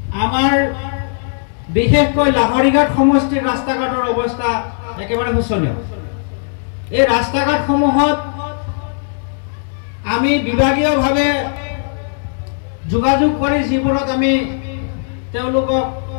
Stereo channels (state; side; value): silent; right; digital silence